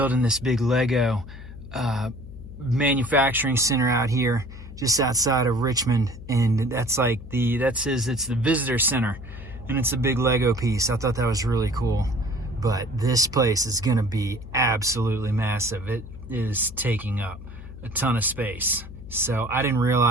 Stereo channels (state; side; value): noise; left; hum, 14 dB below the sound